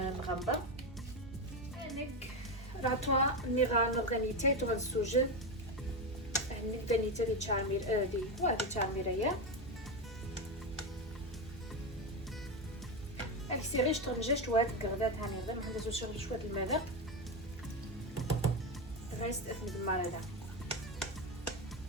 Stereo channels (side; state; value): both; normal; correlation 0.13